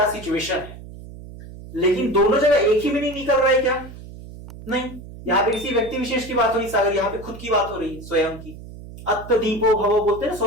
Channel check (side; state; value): right; noise; hum, 15 dB below the sound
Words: सिचुएशन है। लेकिन दोनों जगह एक ही मीनिंग निकल रहा है क्या? नहीं। यहां पे किसी व्यक्ति विशेष की बात हो रही सागर, यहां पे खुद की बात हो रही है, स्वयं की। अत्त दीपो भवो बोलते हैं ना,